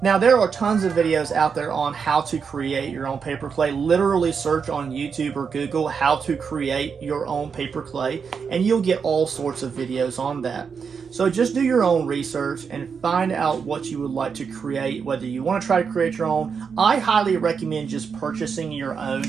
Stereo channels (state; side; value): quieter; left; 6.1 dB